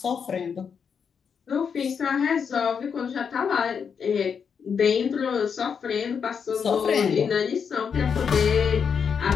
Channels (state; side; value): quieter; right; 6.6 dB